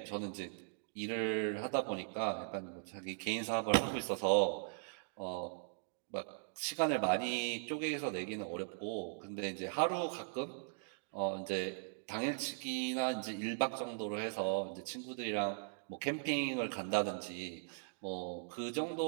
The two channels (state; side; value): silent; left; digital silence